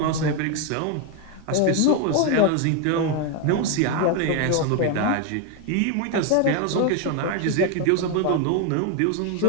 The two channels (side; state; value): both; different; correlation 0.01